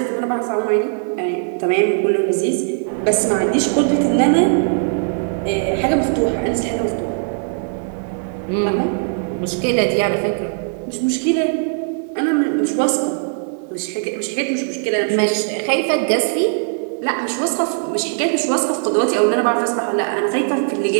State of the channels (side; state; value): left; silent; digital silence